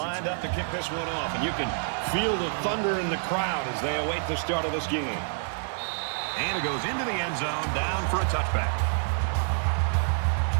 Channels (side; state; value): left; silent; 60 dB below the other